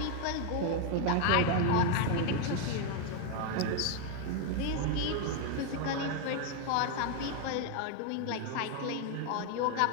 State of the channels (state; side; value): different; both; correlation 0.01